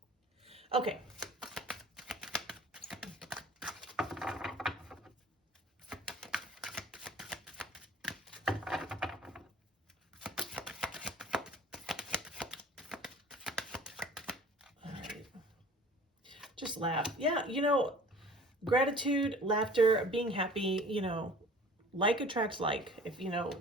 Okay. Just laugh. Yeah, you know, gratitude, laughter, being happy, you know, like attracts like. If, you know,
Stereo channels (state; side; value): normal; both; correlation 0.47